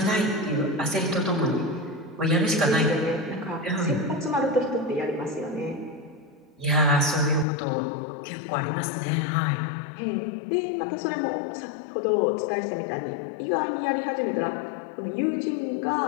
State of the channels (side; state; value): right; drops out; at 7.5 s